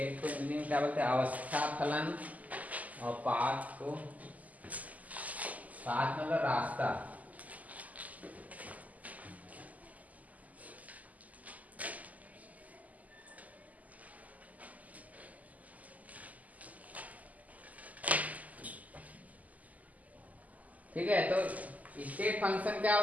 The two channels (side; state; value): left; late; 0.076 ms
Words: को मीनिंग क्या बोलते हैं, अवस्था फलन, और पाथ को, पाथ मतलब रास्ता, ठीक है। तो स्टेट फंक्शन क्या